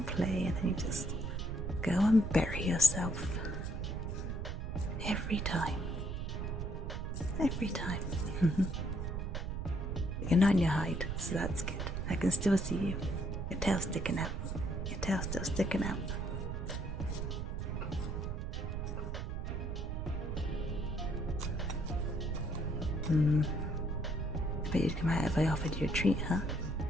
play, and then you just go and bury yourself. Every time. Every time. You're not in your hide, so that's good. I can still see you. Your tail's sticking out. Your tail's still sticking out. But you'd come out if I offered you a treat, huh?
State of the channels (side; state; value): right; noise; rumble, 3 dB below the sound